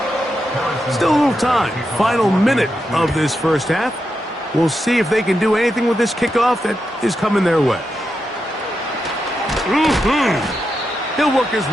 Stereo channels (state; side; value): normal; both; correlation 0.86